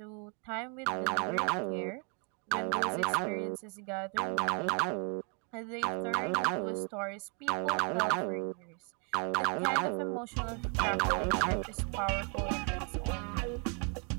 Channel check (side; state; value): left; quieter; 37.9 dB